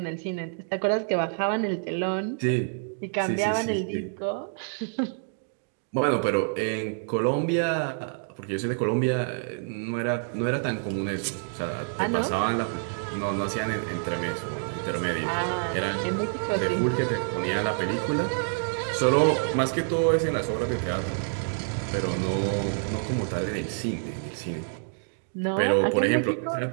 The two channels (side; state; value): left; silent; digital silence